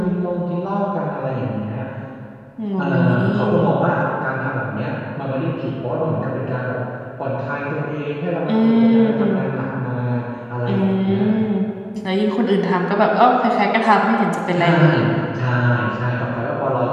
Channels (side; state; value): both; identical; correlation 1.00